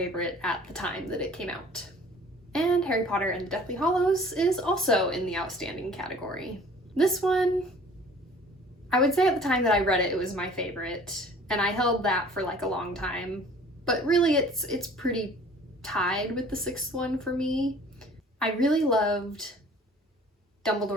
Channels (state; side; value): normal; both; correlation 0.50